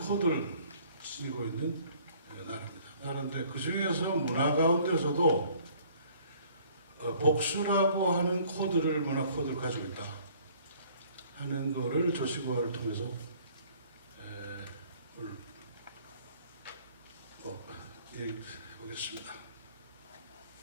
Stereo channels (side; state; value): both; inverted; correlation -0.56